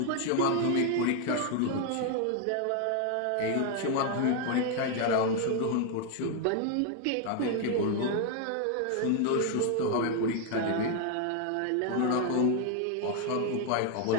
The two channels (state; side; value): different; both; correlation 0.01